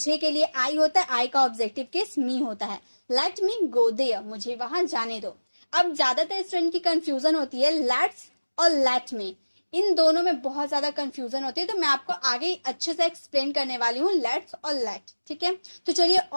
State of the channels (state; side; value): inverted; both; correlation -1.00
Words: के लिए आई होता है. आई का ऑब्जेक्टिव केस मी होता है. Let me go there. मुझे वहां जाने दो. अब ज्यादातर स्टूडेंट की कंफ्यूजन होती है लेट्स और लेट में. इन दोनों में बहुत ज्यादा कंफ्यूजन होती है, तो मैं आपको आगे अच्छे से एक्सप्लेन करने वाली हूँ लेट्स और लेट। ठीक है, तो चलिए